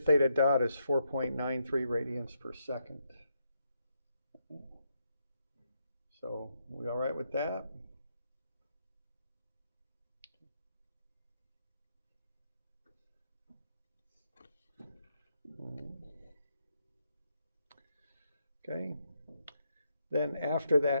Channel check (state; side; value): inverted; both; correlation -0.80